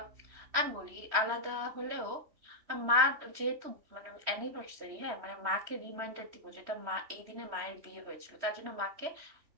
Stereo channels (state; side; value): late; left; 3.1 ms